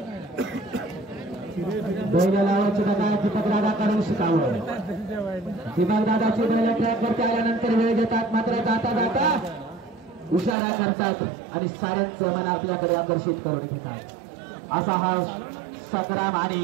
बैल लावायची बघा दीपक दादा कडून शिकावं दीपक दादाची बैल ट्रॅक वरती आल्यानंतर वेळ देतात मात्र जाता जाता इशारा करतात आणि साऱ्यांचे मन आपल्याकडे आकर्षित करून घेतात असा हा संग्राम आणि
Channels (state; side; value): drops out; left; at 10.6 s